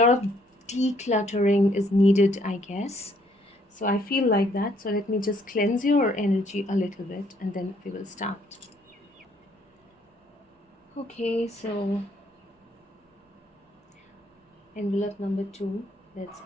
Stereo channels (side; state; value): both; normal; correlation 0.67